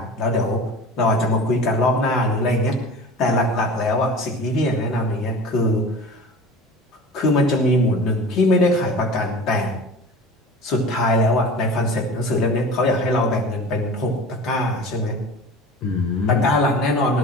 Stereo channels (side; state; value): both; normal; correlation 0.37